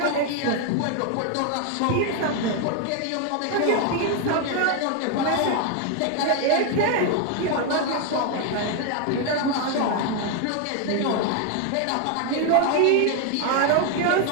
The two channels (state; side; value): different; both; correlation 0.01